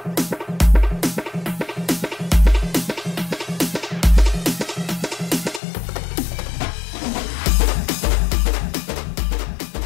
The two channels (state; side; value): drops out; right; at 5.6 s